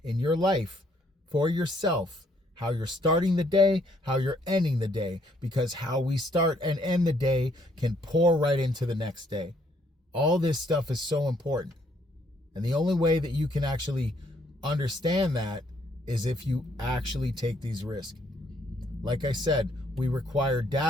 in your life for yourself, how you're starting the day, how you're ending the day, because how we start and end the day can pour right into the next day. All this stuff is so important. And the only way that you can actually understand that is if you actually take these risks. Like I said, we require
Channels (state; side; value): normal; both; correlation 0.68